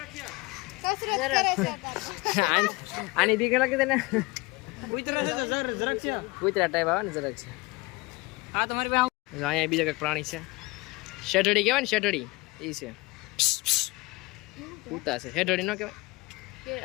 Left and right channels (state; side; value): quieter; right; 23.4 dB